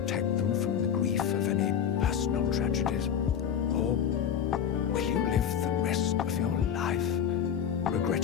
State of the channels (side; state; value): right; quieter; 8.6 dB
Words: them from the grief of any personal tragedies. Or will you live the rest of your life